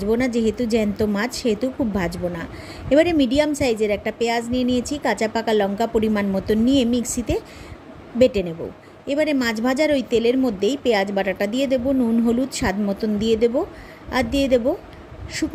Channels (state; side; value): identical; both; correlation 1.00